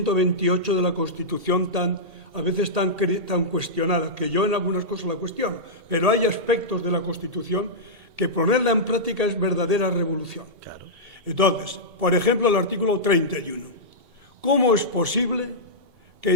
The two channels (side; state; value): left; late; 2.7 ms